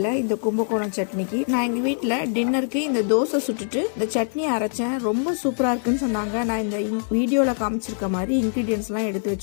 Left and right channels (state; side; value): silent; right; 58 dB below the other